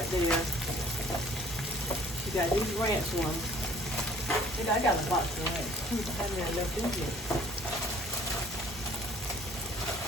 there. You got these ranch ones. I got a box of ranch. I haven't really left in here.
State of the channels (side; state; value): both; normal; correlation 0.55